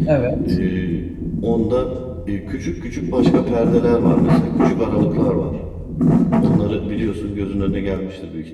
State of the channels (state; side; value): identical; both; correlation 1.00